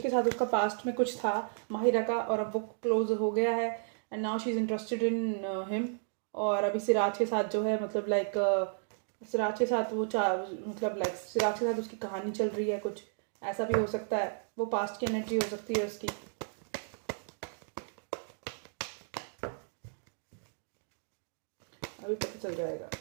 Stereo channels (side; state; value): left; silent; digital silence